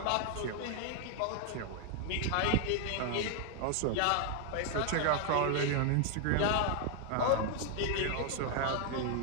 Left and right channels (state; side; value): different; both; correlation 0.00